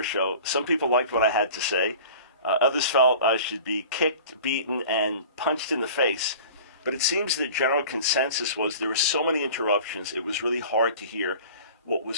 Show, some people liked what I had to say. Others felt I should be kicked, beaten, and punched in the face. But it seems the general consensus was there were so many interruptions, it was really hard to hear what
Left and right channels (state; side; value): inverted; both; correlation -0.42